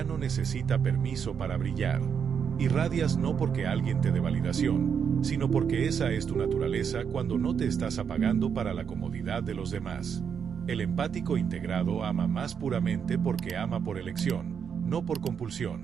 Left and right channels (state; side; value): quieter; left; 7.1 dB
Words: no necesita permiso para brillar. Irradias no porque alguien te dé validación, sino porque esa es tu naturaleza cuando no te estás apagando para la comodidad de los demás. El empático integrado ama más puramente porque ama por elección, no por